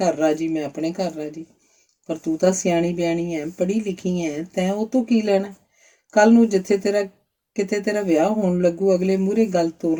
ਰਾਜੀ, ਮੈਂ ਆਪਣੇ ਘਰ ਰਾਜੀ। ਪਰ ਤੂੰ ਤਾਂ ਸਿਆਣੀ ਬਿਆਣੀ ਹੈ, ਪੜ੍ਹੀ ਲਿਖੀ ਹੈ, ਤੈਂ ਉਹ ਤੋਂ ਕੀ ਲੈਣਾ? ਕੱਲ ਨੂੰ ਜਿੱਥੇ ਕਿਤੇ ਤੇਰਾ ਵਿਆਹ ਹੋਣ ਲੱਗੂ, ਅਗਲੇ ਮੂਹਰੇ ਗੱਲ ਤੋਰ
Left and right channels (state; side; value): identical; both; correlation 1.00